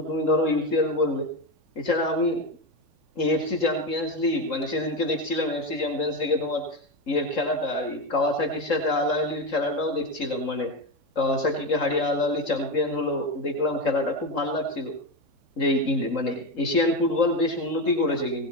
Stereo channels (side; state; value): right; late; 3.7 ms